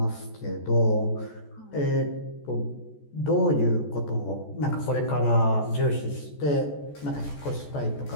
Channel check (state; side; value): late; right; 14 ms